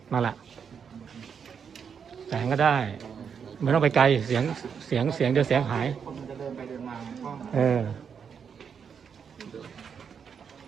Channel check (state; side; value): quieter; left; 6.9 dB